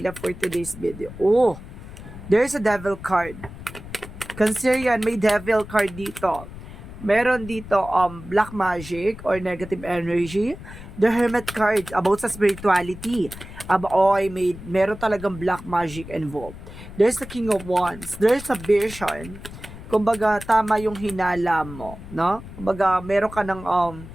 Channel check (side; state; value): left; noise; rumble, 14 dB below the sound